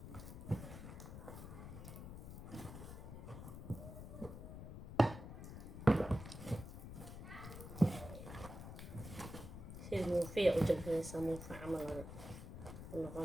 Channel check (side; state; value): left; noise; rumble, 10 dB below the sound